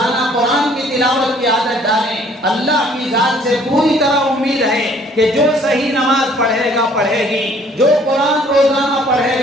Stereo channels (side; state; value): both; normal; correlation 0.58